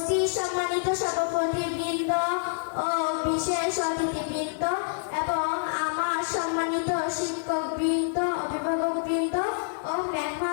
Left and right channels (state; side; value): silent; right; 60 dB below the other